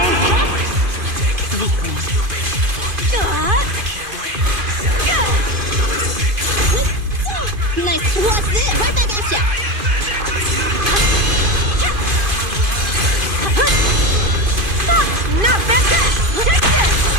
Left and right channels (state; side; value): late; left; 2.5 ms